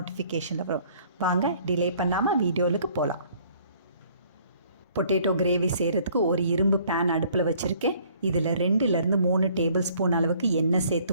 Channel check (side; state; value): both; inverted; correlation -0.59